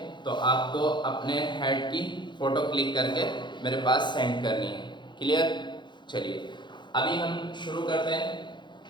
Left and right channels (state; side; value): late; right; 0.22 ms